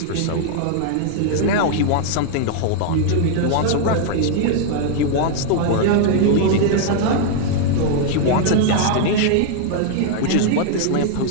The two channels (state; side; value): different; both; correlation 0.00